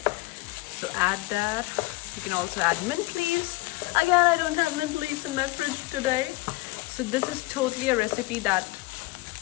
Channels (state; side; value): quieter; right; 21.5 dB